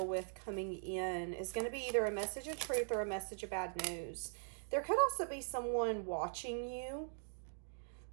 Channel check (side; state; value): left; silent; digital silence